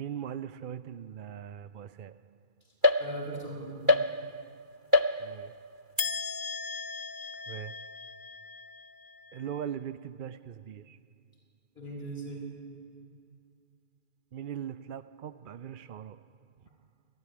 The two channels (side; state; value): left; late; 2.4 ms